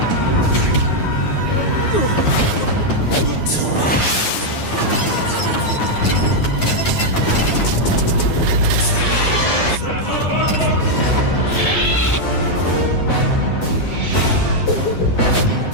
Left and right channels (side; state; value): right; late; 9.3 ms